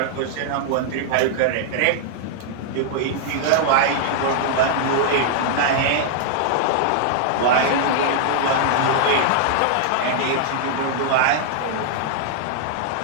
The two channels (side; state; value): both; different; correlation -0.01